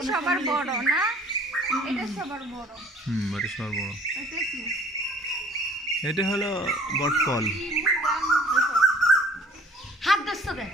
সবার বড় না এটা সবার বড় এটা সবার বড় এটা কি এটা হলো বটকল হাত দস্ত দে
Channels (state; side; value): normal; both; correlation 0.53